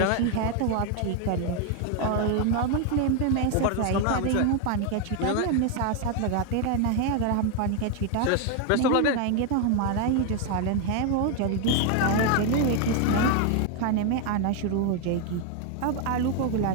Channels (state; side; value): different; both; correlation 0.01